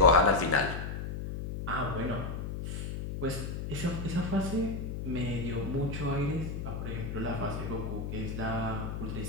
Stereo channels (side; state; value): left; noise; hum, 5 dB below the sound